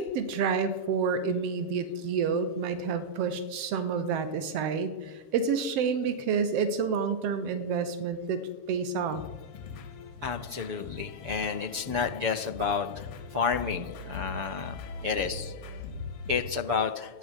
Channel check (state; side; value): late; left; 6.9 ms